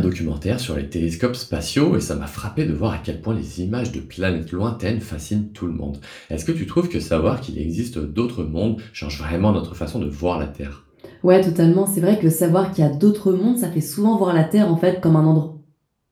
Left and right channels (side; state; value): both; identical; correlation 1.00